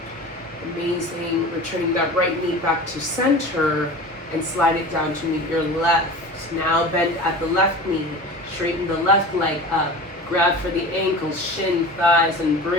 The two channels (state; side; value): normal; both; correlation 0.35